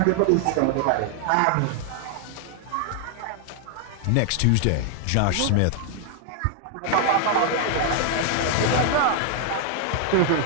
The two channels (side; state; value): both; different; correlation 0.00